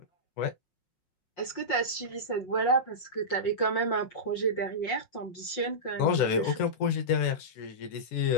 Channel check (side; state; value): right; late; 5.6 ms